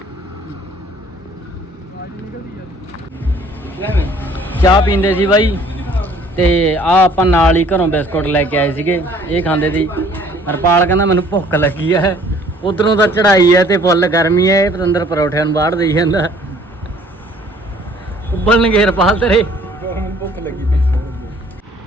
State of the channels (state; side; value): normal; both; correlation 0.56